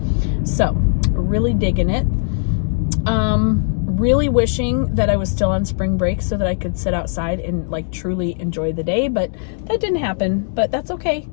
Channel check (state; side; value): silent; right; digital silence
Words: So really digging it. Really wishing that I was still on spring break so that I could sit outside and like truly enjoy the day, but that didn't happen. But that's okay.